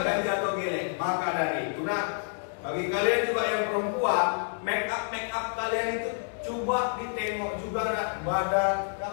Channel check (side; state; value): right; silent; digital silence